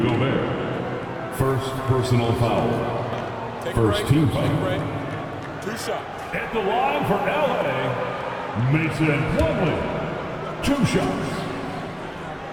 Gobert. First personal foul. First team foul. 2 shots. At the line for LA, Mason Plumlee. 2 shots.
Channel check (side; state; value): both; identical; correlation 1.00